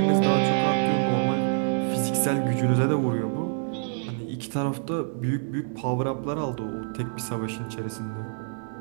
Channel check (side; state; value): left; silent; digital silence